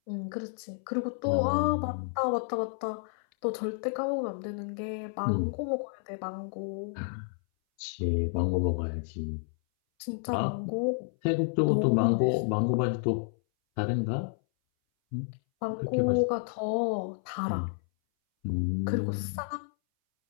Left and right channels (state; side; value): silent; right; 58 dB below the other